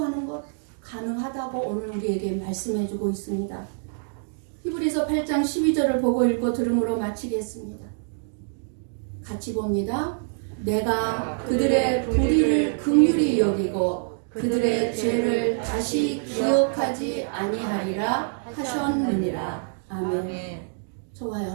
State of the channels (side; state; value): left; silent; digital silence